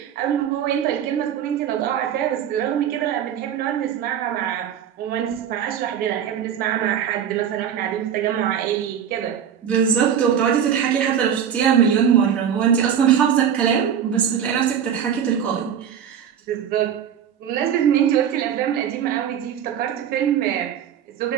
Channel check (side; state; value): left; quieter; 8.8 dB